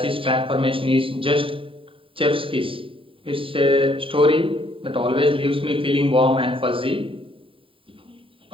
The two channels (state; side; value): late; left; 0.26 ms